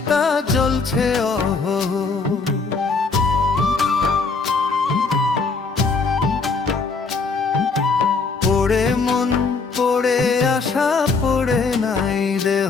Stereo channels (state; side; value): quieter; right; 4.4 dB